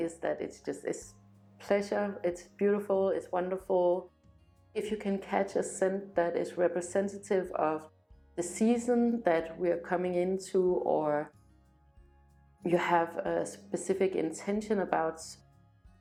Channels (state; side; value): identical; both; correlation 1.00